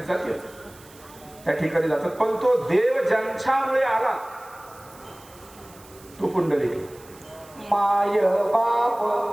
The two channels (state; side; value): noise; right; hiss, 23 dB below the sound